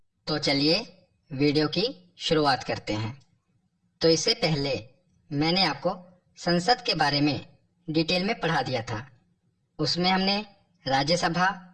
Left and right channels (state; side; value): identical; both; correlation 1.00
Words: तो चलिए वीडियो की शुरुआत करते हैं। तो इससे पहले मैंने आपको संसद के बारे में डिटेल में पढ़ा दिया था। उसमें हमने राज्यसभा,